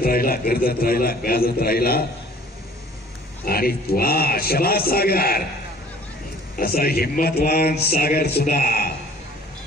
राहिला, गर्दत राहिला, गाजत राहिला. आणि वा, शबाज सागर, असा हिम्मतवान सागर सुद्धा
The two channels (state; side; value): normal; both; correlation 0.52